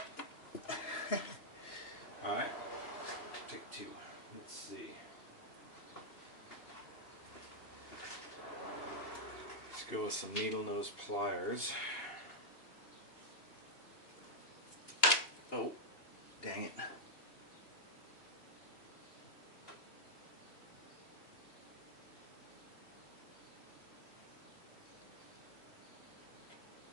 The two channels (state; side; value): late; right; 2.9 ms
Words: Alright, take two. Let's see. Let's go with some needle nose pliers. Oh, dang it.